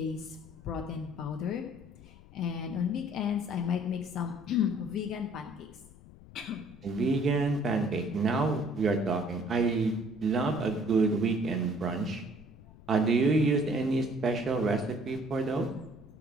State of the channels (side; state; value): left; noise; rumble, 21 dB below the sound